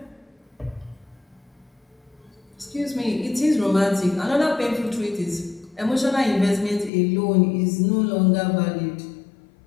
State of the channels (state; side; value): drops out; right; at 6.9 s